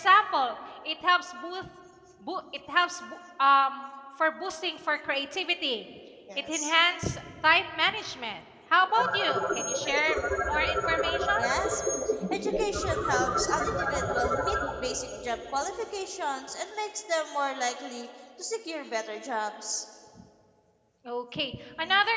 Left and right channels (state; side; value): identical; both; correlation 1.00